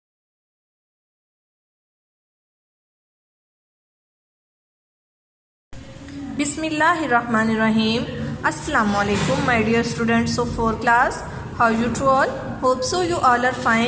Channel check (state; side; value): identical; both; correlation 1.00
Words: Assalamu alaikum, my dear students of 4th class. How you to all? Hope so you all are